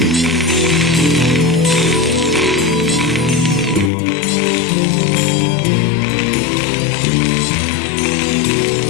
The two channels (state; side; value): drops out; right; at 3.9 s